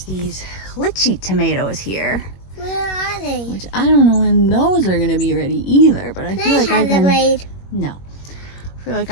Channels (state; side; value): late; right; 21 ms